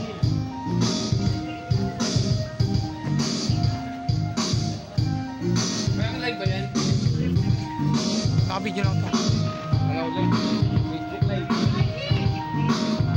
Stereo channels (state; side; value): identical; both; correlation 1.00